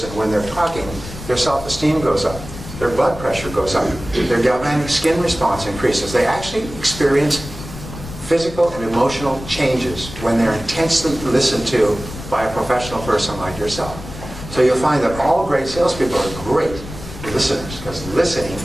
when they're talking, their self-esteem goes up, their blood pressure goes up, their galvanic skin response increases. They actually experience physical and emotional changes when they're intensely listened to by a professional person like yourself. So you'll find that all great salespeople are great listeners, because listening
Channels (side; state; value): left; noise; rumble, 12 dB below the sound